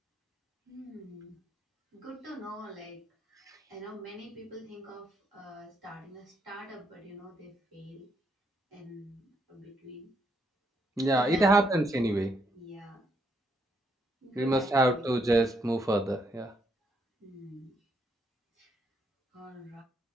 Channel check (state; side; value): normal; both; correlation 0.75